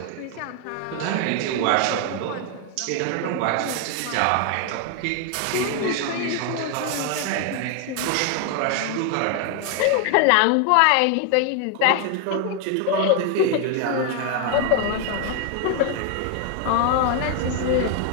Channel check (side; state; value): both; different; correlation 0.00